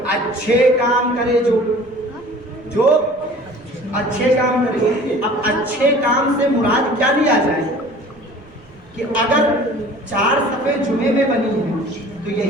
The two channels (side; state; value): right; noise; rumble, 27 dB below the sound